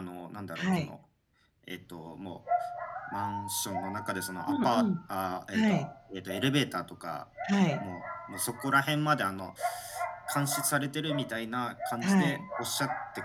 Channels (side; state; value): both; identical; correlation 1.00